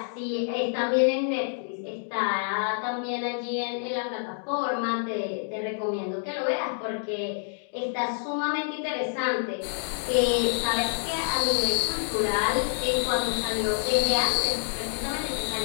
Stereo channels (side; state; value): right; silent; digital silence